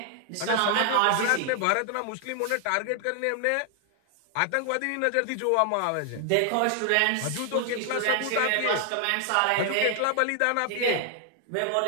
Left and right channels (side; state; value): both; different; correlation 0.00